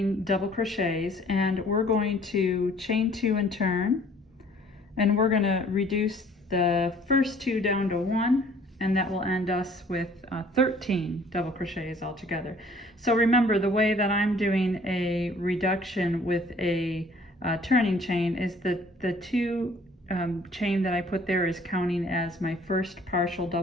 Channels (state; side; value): normal; both; correlation 0.55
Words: double crochets, and we're going to chain 2 and turn, and we're going to reduce the first 2 down to 1, and that will end us with 13 double crochets altogether. So remember, the way that I'm doing a reduction with a turning chain is that the 2 chain that I put there is counting as my first partial